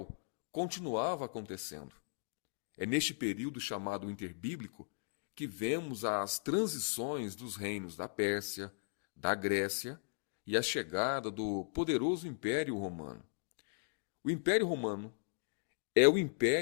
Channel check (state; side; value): silent; right; digital silence